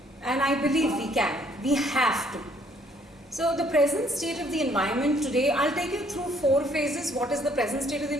And I believe we can. We have to. So the present state of the environment today, I'll take you through 4 phases. What is the present state of the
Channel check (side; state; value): both; normal; correlation 0.64